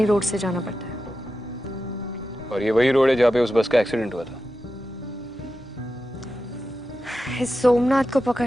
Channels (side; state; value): both; normal; correlation 0.91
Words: रोड से जाना पड़ता है। और ये वही रोड है जहाँ पे उस बस का एक्सीडेंट हुआ था। इस सोमनाथ को